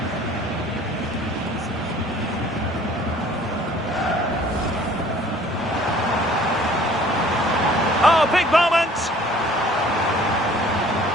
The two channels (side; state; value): both; normal; correlation 0.53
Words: Oh, big moment!